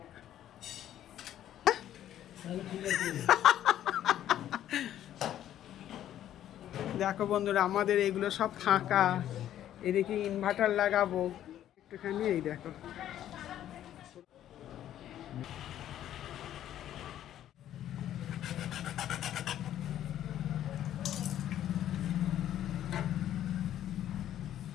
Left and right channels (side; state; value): right; quieter; 11.6 dB